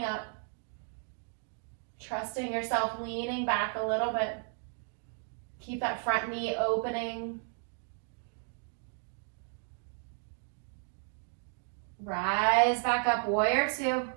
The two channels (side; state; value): left; silent; 55 dB below the other